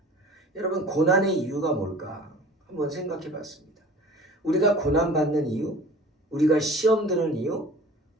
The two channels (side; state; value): both; normal; correlation 0.44